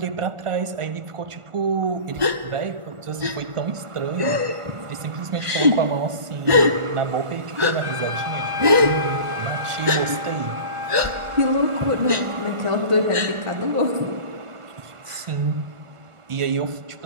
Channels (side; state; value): left; late; 1.4 ms